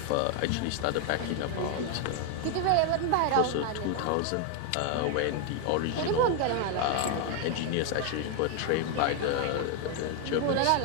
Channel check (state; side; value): different; both; correlation 0.01